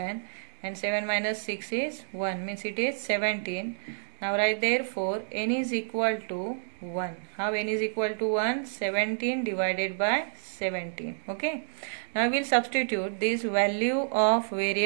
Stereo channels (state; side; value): silent; left; digital silence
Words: and 7 minus 6 is 1, means it is 17. Now write therefore n is equal to 1. How n is equal to 1? 17 divided by 17. Okay. Now we will substitute this value of